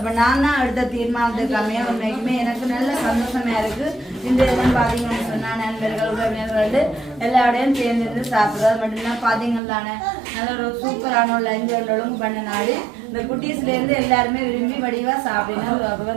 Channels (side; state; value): left; drops out; at 9.6 s